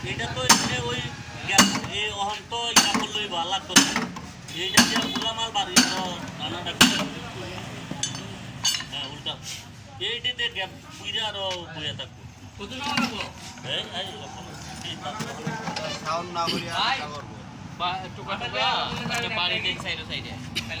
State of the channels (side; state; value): both; identical; correlation 1.00